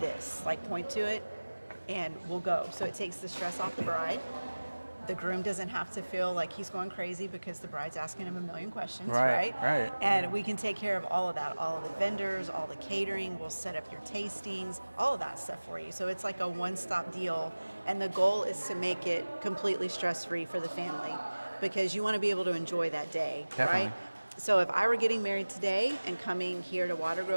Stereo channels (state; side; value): inverted; both; correlation -1.00